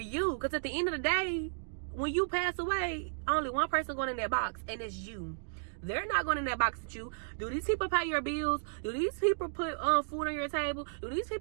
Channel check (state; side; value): silent; left; digital silence